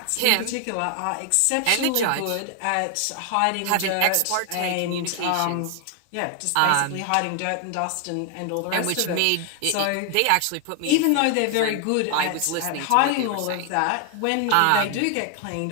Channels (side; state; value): both; different; correlation 0.00